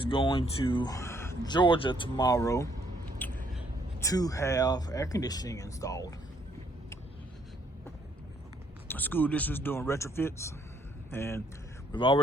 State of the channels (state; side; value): normal; both; correlation 0.68